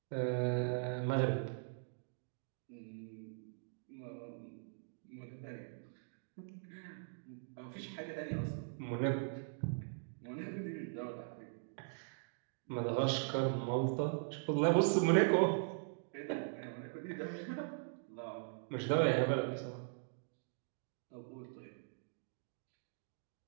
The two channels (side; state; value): left; silent; digital silence